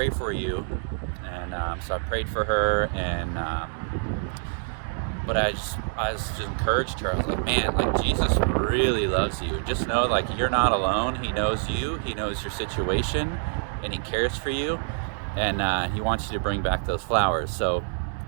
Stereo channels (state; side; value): silent; left; digital silence